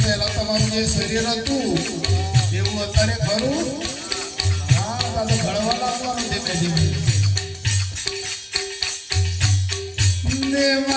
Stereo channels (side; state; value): both; identical; correlation 1.00